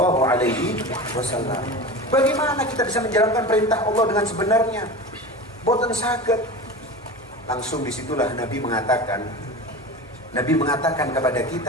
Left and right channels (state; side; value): normal; both; correlation 0.30